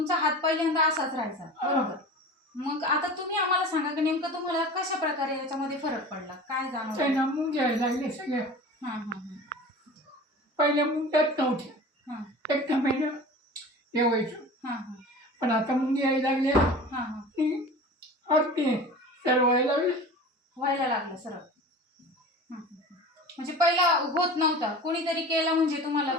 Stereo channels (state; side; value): normal; both; correlation 0.37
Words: हात पहिल्यांदा असाच राहायचा बरोबर। मग आता तुम्ही आम्हाला सांगा की नेमकं तुम्हाला कशा प्रकारे याच्यामध्ये फरक पडला, काय जाणवलं? मुंग्या लागले सगळ्या. हां हां हां पहिल्या मुंग्याच नव्हत्या, हां एक महिना हे व्हायचं, हां हां पण आता मुंग्या यायला लागल्या हां हां की अगदी सर्व व्हायला लागलं सरळ। म्हणजे पहिला होत नव्हता, कोणीतरी केला म्हणजे तुम्हाला